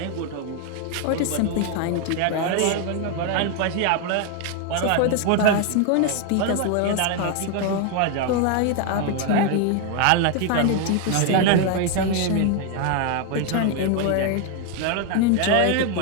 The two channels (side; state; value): both; different; correlation 0.01